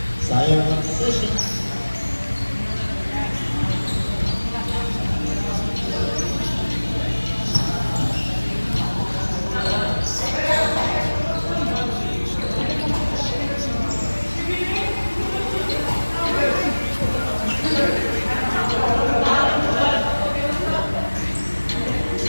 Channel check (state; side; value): inverted; both; correlation -1.00